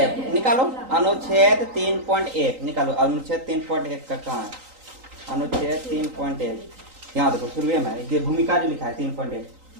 निकालो अनुच्छेद 3.1 निकालो, अनुच्छेद 3.1 का कहाँ है, अनुच्छेद 3.1 यहाँ देखो शुरू में ये भूमिका जो लिखा है 3.1,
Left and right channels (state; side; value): late; left; 3.9 ms